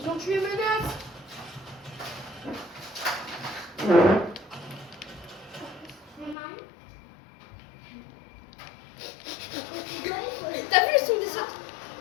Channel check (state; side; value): drops out; right; at 6.4 s